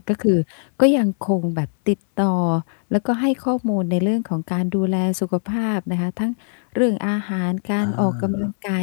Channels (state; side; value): silent; right; 65 dB below the other